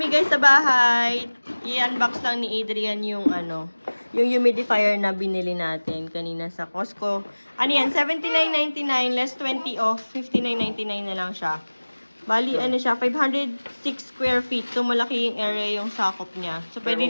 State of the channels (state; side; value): inverted; both; correlation -1.00